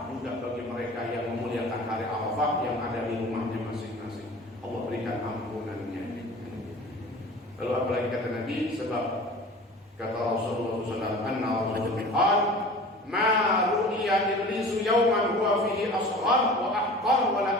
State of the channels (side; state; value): both; normal; correlation 0.41